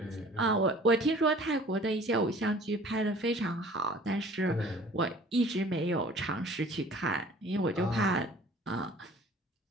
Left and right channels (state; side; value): normal; both; correlation 0.49